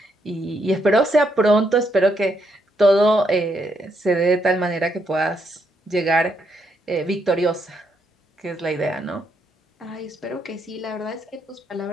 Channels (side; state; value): both; normal; correlation 0.76